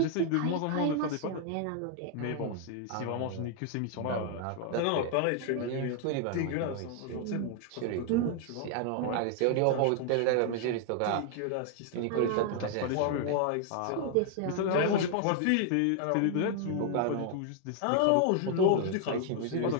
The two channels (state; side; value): different; both; correlation 0.00